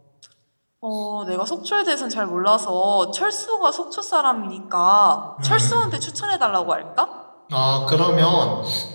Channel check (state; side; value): inverted; both; correlation -1.00